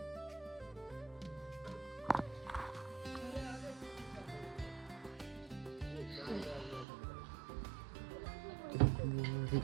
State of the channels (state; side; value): drops out; left; at 6.9 s